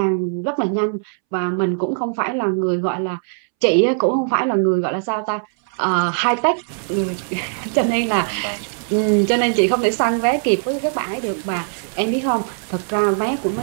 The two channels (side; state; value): left; silent; 66 dB below the other